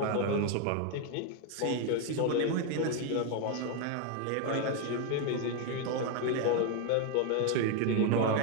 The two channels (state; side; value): different; both; correlation 0.01